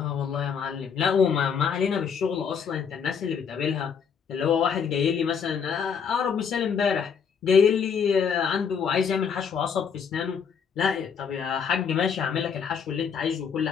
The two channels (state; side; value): quieter; right; 6.7 dB